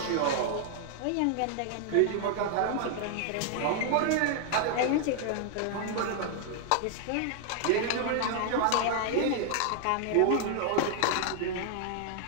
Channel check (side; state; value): both; different; correlation 0.00